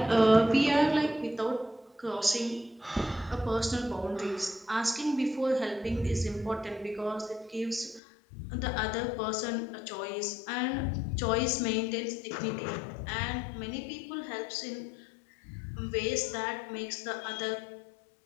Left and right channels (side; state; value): right; drops out; at 8.0 s